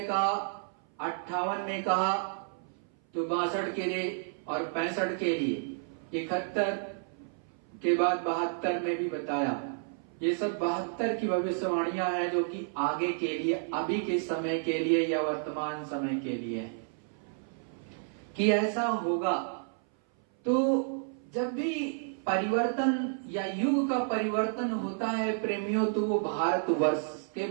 कहा, 58 में कहा, तो 62 के लिए और 65 के लिए, 71 के बाद 72 में भी बताया। ये सब 72 की भविष्यवाणियां हैं, जो कि आगे के लिए, अभी के समय के लिए या वर्तमान समय के लिए है कि ऐसा होगा। तो जब भी परिवर्तन या युग का परिवर्तन होता है प्रेमियों, तो वो भारतवर्ष के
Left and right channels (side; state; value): left; silent; 57 dB below the other